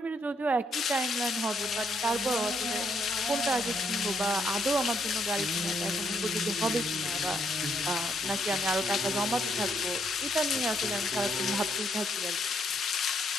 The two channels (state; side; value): normal; both; correlation 0.74